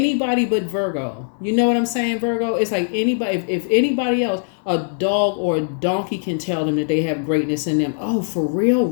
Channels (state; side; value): silent; right; 63 dB below the other